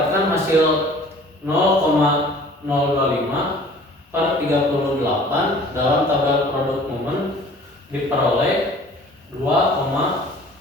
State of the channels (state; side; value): normal; both; correlation 0.49